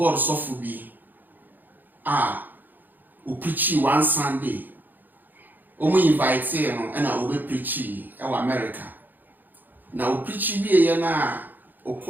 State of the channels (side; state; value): left; late; 0.088 ms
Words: suffer be, who preach one Sunday, we invite him and I will preach in America. Now, preach be a na, or